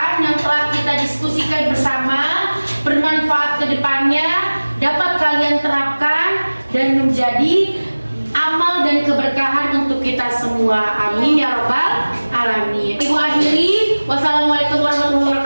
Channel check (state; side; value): inverted; both; correlation -1.00